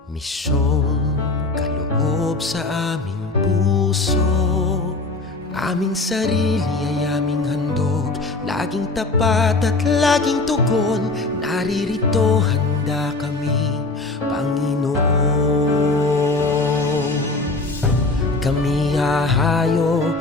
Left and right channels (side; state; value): right; quieter; 3.3 dB